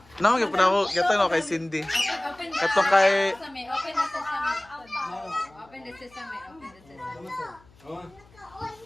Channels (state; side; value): noise; left; hum, 28 dB below the sound